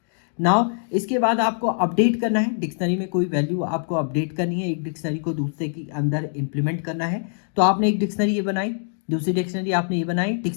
नाउ इसके बाद आपको अपडेट करना है, डिक्शनरी में कोई वैल्यू आपको अपडेट करनी है, एक डिक्शनरी को दूसरे के अंदर इंप्लीमेंट करना है। तो आपने एक डिक्शनरी ये बनाई, दूसरी डिक्शनरी आपने ये बनाई,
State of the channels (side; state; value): right; silent; digital silence